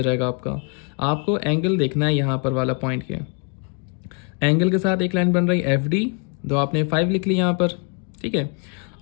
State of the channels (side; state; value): right; quieter; 37.4 dB